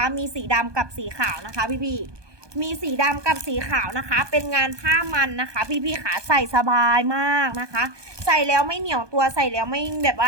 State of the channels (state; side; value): late; left; 1.2 ms